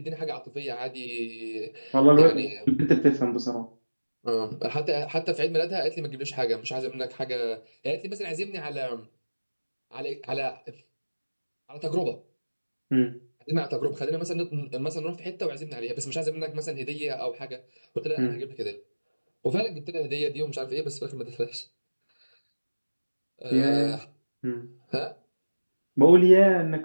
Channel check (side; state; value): both; inverted; correlation -1.00